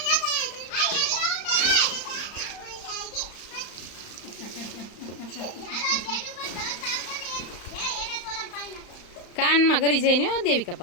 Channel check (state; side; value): late; right; 35 ms